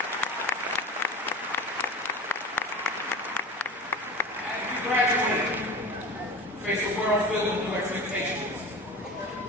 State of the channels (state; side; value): normal; both; correlation 0.32